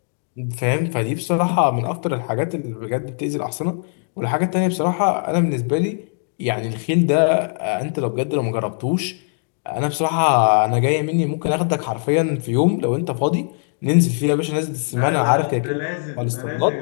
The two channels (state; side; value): silent; right; 65 dB below the other